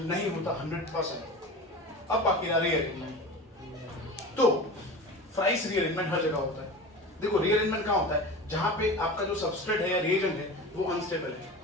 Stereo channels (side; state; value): both; normal; correlation 0.32